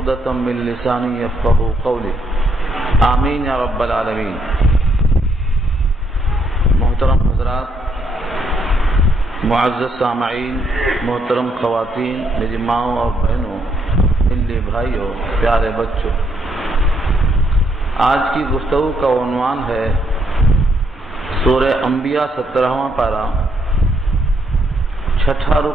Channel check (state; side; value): normal; both; correlation 0.74